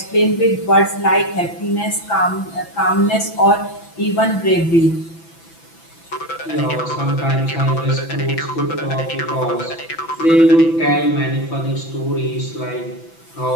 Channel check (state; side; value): late; right; 6.0 ms